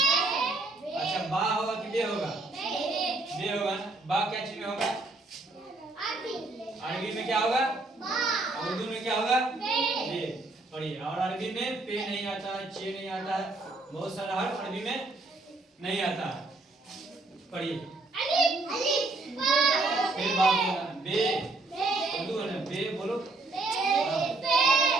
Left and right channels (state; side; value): quieter; left; 3.1 dB